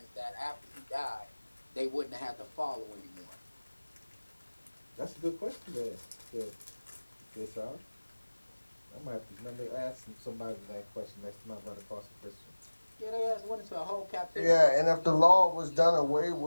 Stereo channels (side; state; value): both; inverted; correlation -1.00